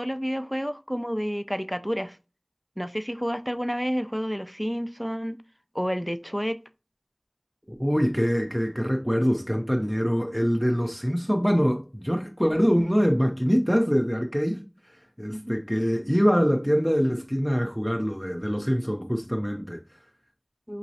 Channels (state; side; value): identical; both; correlation 1.00